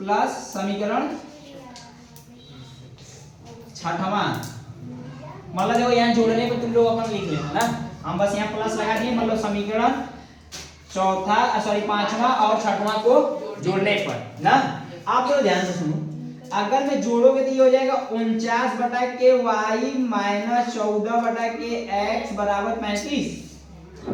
समीकरण 6वां, मतलब देखो यहाँ जोड़ने को तुम लोग अपन लिख लेना ना, हम बस यहाँ प्लस लगा दिए, मतलब समीकरण 5वां और 6वां को जोड़ने पर ना। आप लोग ध्यान से सुनो, अगर मैं जोड़ोगे तो ये हो जाएगा 49 बटा के y - 14 बटा के x बराबर 35,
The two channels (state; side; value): identical; both; correlation 1.00